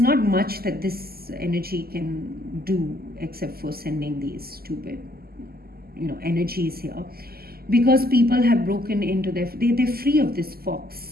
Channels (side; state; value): left; late; 0.45 ms